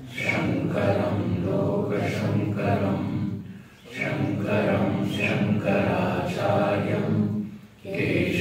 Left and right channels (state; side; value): identical; both; correlation 1.00